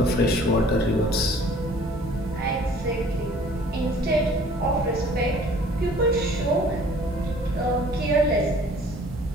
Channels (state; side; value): normal; both; correlation 0.53